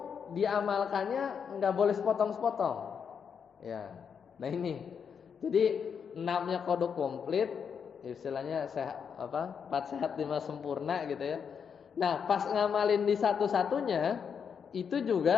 diamalkannya nggak boleh sepotong-sepotong, ya. Nah ini, jadi 6-nya kodok komplit, istilahnya sehat, 4 sehat 5 sempurna gitu ya. Nah, pas ngamalin di satu-satunya itu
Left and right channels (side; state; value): right; quieter; 6.9 dB